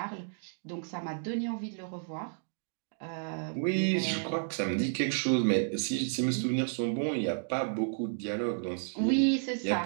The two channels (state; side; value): silent; left; digital silence